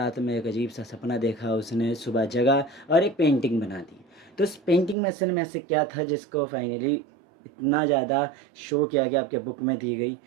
में एक अजीब सा सपना देखा उसने, सुबह जगा और एक पेंटिंग बना दी। तो उस पेंटिंग में असल में ऐसे क्या था जिसको फाइनली इतना ज़्यादा शो किया गया, आपके बुक में दी गई।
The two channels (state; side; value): drops out; left; at 5.0 s